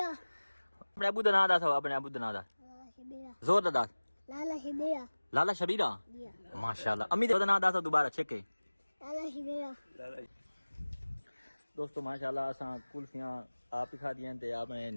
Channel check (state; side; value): inverted; both; correlation -1.00